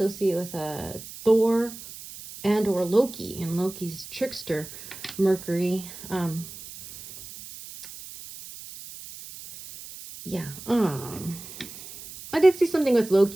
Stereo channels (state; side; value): noise; right; hiss, 14 dB below the sound